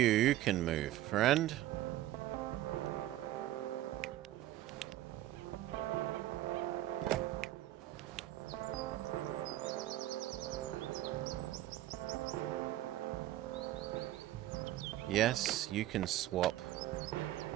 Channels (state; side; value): quieter; left; 14.5 dB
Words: can move, friend. Yes, you can swap